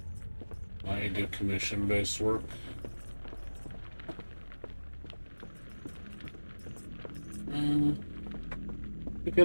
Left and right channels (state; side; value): inverted; both; correlation -1.00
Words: I do commission-based work. We